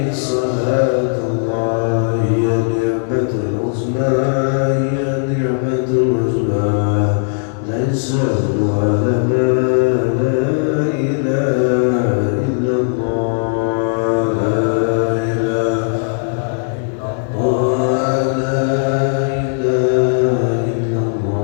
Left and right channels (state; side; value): silent; right; digital silence